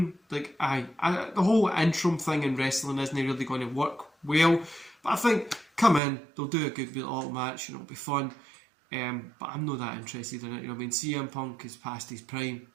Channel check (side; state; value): left; drops out; at 6.0 s